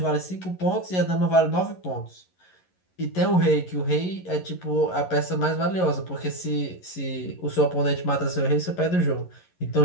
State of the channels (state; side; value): late; right; 11 ms